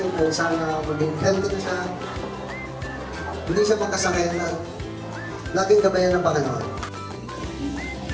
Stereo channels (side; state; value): both; identical; correlation 1.00